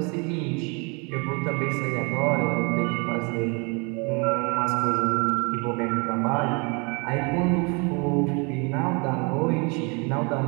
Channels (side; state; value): left; quieter; 31.8 dB